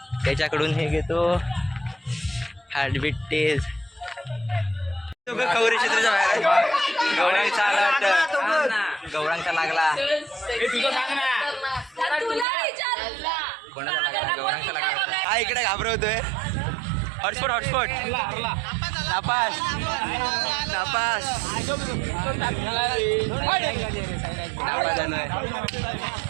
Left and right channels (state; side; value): drops out; left; at 12.5 s